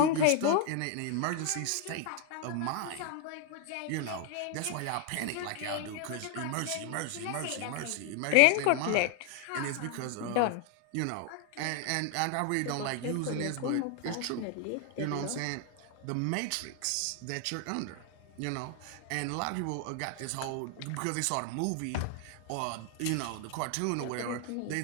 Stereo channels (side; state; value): both; different; correlation 0.01